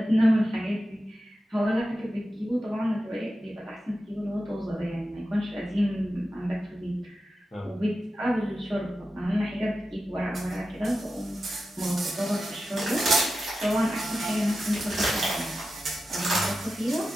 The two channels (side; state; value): both; normal; correlation 0.92